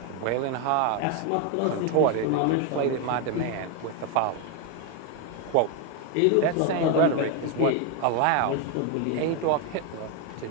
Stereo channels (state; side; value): different; both; correlation 0.01